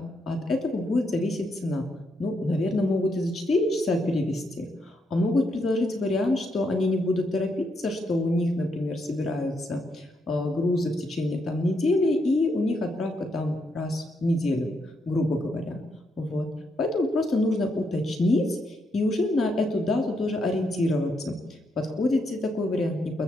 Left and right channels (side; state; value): both; normal; correlation 0.79